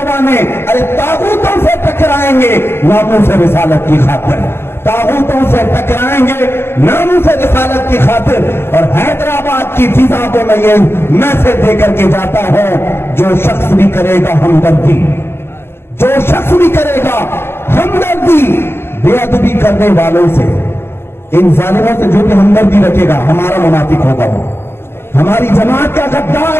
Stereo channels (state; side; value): late; right; 0.11 ms